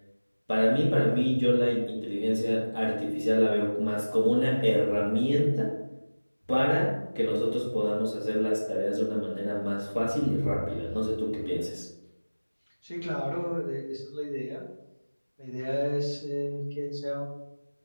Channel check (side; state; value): both; inverted; correlation -1.00